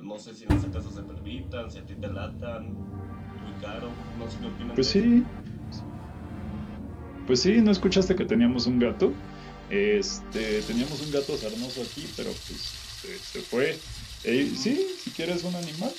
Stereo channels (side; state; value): both; identical; correlation 1.00